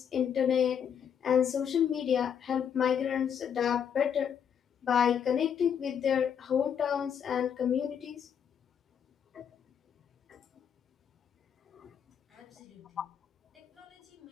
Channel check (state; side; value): quieter; right; 8.1 dB